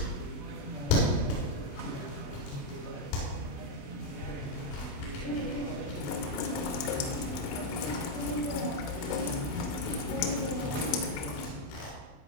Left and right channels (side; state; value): right; late; 28 ms